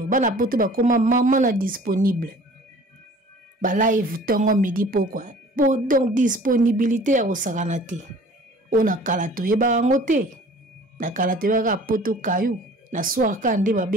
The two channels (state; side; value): normal; both; correlation 0.48